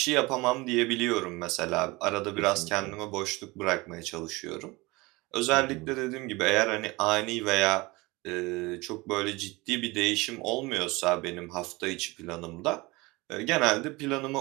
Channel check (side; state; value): left; quieter; 23.0 dB